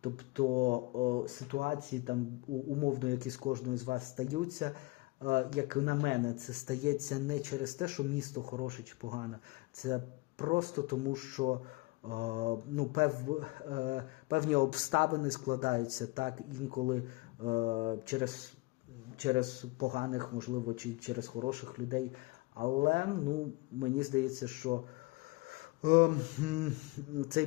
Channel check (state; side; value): quieter; right; 23.6 dB